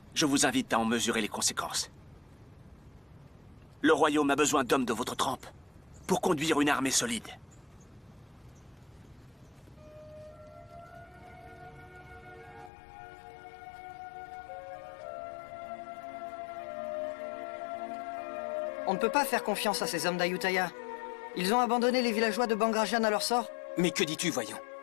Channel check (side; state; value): right; drops out; at 12.7 s